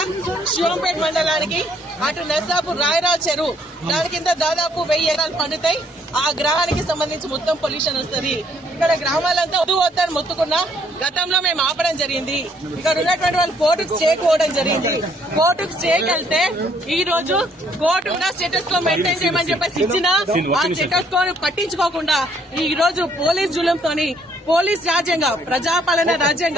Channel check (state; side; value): normal; both; correlation 0.66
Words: శివంపేట మండలానికి అటు నర్సాపూర్ రాయరావు చెరువు దాని కింద దాదాపు 1000 ఎకరాలు పండుతాయి. ఆ గ్రహానికి సంబంధించి మొత్తం పొల్యూషన్ వస్తుంది. ఇక్కడ గ్రామాలంతా వద్దని మొత్తుకున్నా గతంలో మేము ఆపడం జరిగింది. ఇక్కడ ఉన్నటువంటి వాళ్ళు కోర్టుకు చేరుకోవడం జరిగింది. కోర్టుకు చేకెళ్తే ఈ రోజు కోర్టు కూడా స్టేటస్ కో మెయింటైన్ చేయమని చెప్పేసి ఇచ్చినా ఆ స్టేటస్ కో పట్టించుకోకుండా ఈ రోజు పోలీస్ జులంతోని పోలీస్ రాజ్యంగా ప్రజాపాలన రాజ్యం